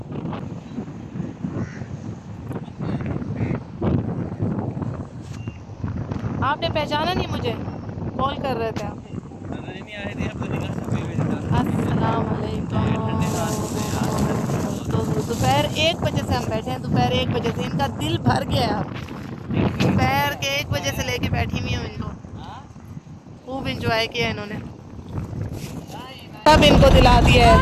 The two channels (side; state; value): both; identical; correlation 1.00